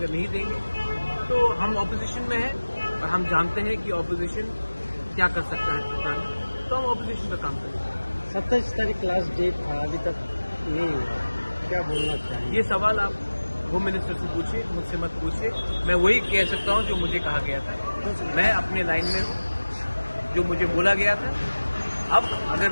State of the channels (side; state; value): both; inverted; correlation -1.00